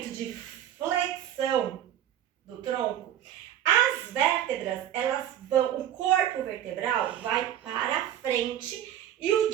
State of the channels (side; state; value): left; quieter; 11.0 dB